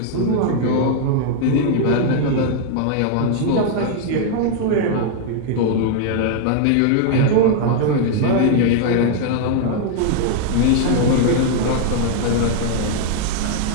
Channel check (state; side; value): different; both; correlation -0.01